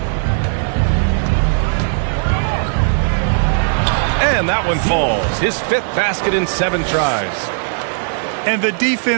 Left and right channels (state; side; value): silent; left; digital silence